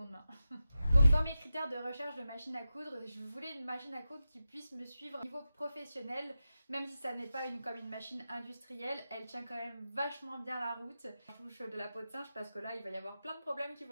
main. Donc dans mes critères de recherche de machine à coudre, je voulais une machine à coudre qui puisse me suivre au niveau professionnel, même si ça n'est pas comme une machine industrielle, elle tient quand même vachement bien la route. Je touche de la peau de singe parce que là il va y avoir plein de problèmes qui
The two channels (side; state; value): both; inverted; correlation -0.92